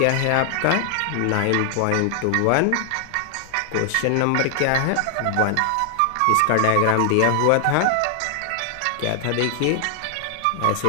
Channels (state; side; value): different; both; correlation 0.00